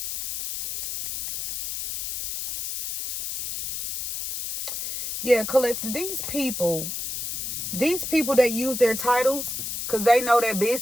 Yeah, Collective, these people that use their titles because they know their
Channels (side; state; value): left; noise; hiss, 4 dB below the sound